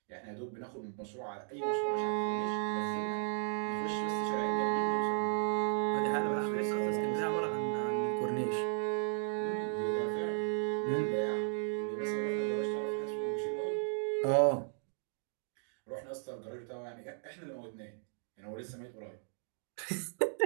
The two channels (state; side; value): silent; left; digital silence